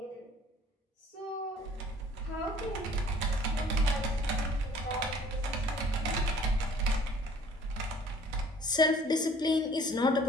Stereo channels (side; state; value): both; normal; correlation 0.53